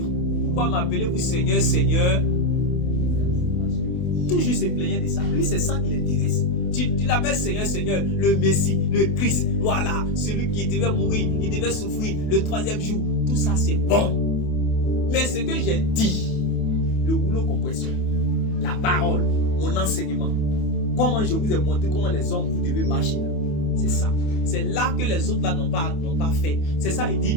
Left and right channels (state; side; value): late; right; 28 ms